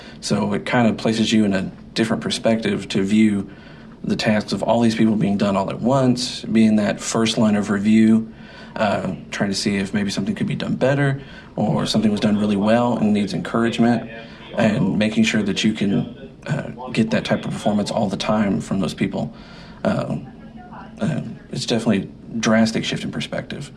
So it kind of places you in a different perspective to view the tasks of all these people being done all at once, being that first line of review, trying to see if maybe something could be done better or something was done really well and needs encouragement, and making sure that you can get that type of performance all the time from those people. It's definitely a drastic shift in perspective.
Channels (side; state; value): both; identical; correlation 1.00